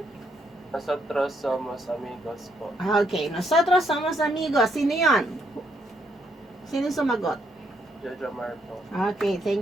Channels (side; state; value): both; normal; correlation 0.73